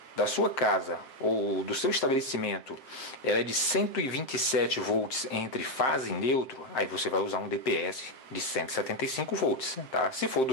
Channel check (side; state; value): right; late; 7.6 ms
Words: da sua casa ou do seu estabelecimento ela é de 127 volts entre fase e neutro, aí você vai usar um DPS de 175 volts, tá? Se for